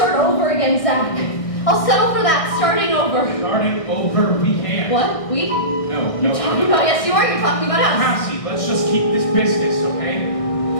over again, Zach. I'll settle for that, starting over. Starting over, we can't. What? We? No, You're talking about, yes you are, you're talking about us. Cassie, let's just keep this business, okay?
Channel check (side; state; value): right; late; 1.6 ms